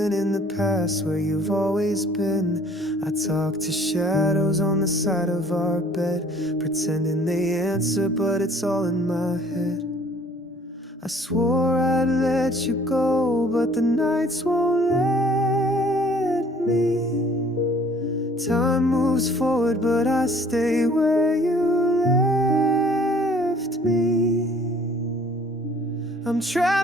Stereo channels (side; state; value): both; normal; correlation 0.55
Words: in the past where you've always been. I talk to shadows on the side of our bed, pretending they answer, but it's all in my head. I swore I'd let you go, but the nights won't let me. Time moves forward, but I stay where you left me. I'm